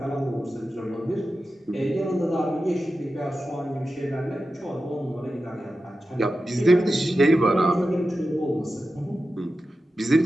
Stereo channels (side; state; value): both; normal; correlation 0.92